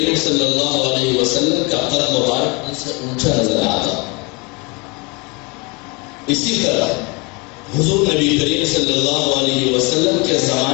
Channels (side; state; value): right; quieter; 28.5 dB